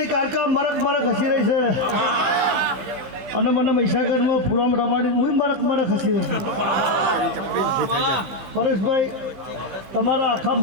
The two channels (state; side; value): late; left; 15 ms